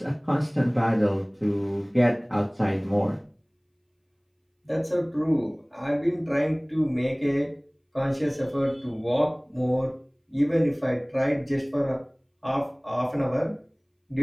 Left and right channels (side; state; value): both; identical; correlation 1.00